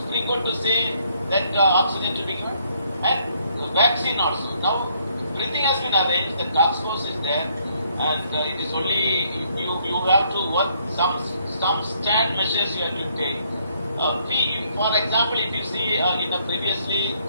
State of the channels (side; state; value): both; inverted; correlation -0.68